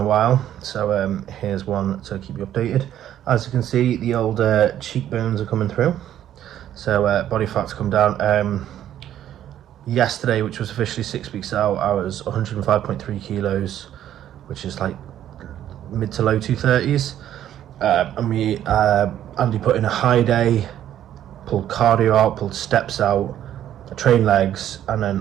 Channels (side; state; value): left; quieter; 11.3 dB